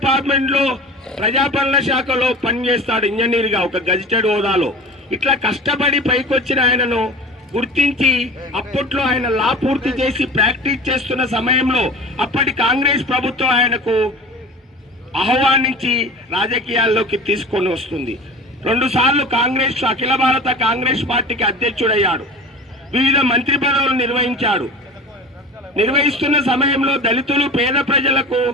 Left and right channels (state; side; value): normal; both; correlation 0.36